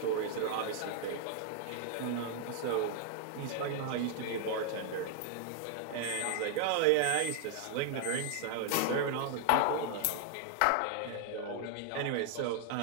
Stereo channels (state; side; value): different; both; correlation 0.00